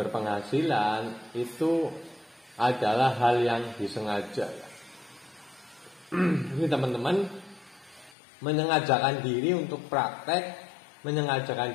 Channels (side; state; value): right; drops out; at 8.2 s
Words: penghasilan, itu adalah hal yang disengaja. Ini teman-teman menyengajakan diri untuk praktek, menyengajakan